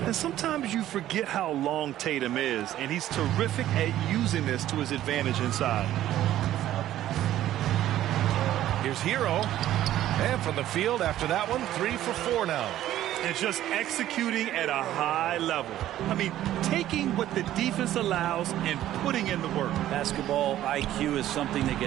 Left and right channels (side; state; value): left; quieter; 13.0 dB